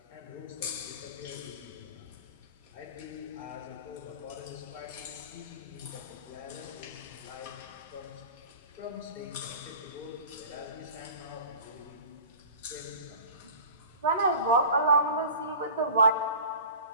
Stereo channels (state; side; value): inverted; both; correlation -0.39